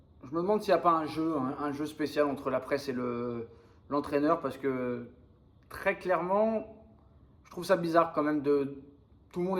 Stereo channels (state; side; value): identical; both; correlation 1.00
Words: demande s'il n'y a pas un jeu spécial entre la presse et l'entraîneur, parce que très clairement, je trouve ça bizarre quand même Tout le monde